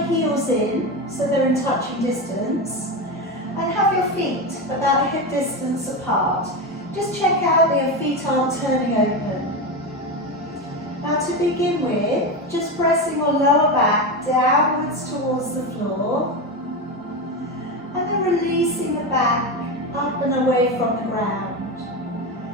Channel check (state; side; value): normal; both; correlation 0.17